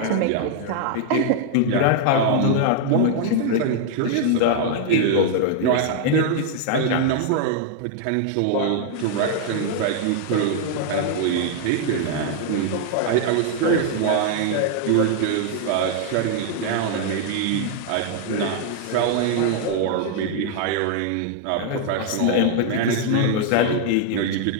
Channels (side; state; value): both; different; correlation 0.00